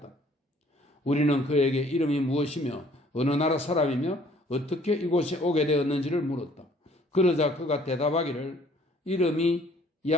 우리는 그에게 이름이 무엇이며 어느 나라 사람이며 어떻게 이곳에 오게 되었는지를 물었다. 그러자 그가 대답하기를 이름이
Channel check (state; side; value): normal; both; correlation 0.58